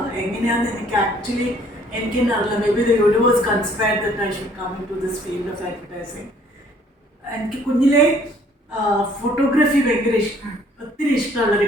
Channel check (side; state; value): both; normal; correlation 0.59